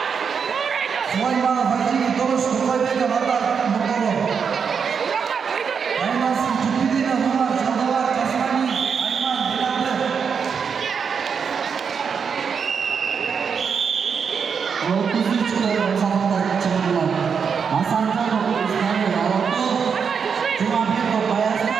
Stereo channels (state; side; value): quieter; left; 6.4 dB